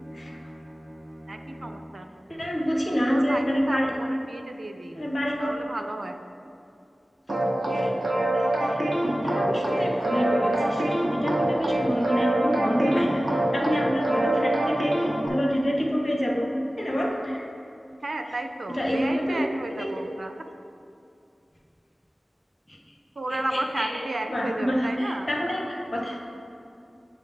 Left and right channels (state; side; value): normal; both; correlation 0.96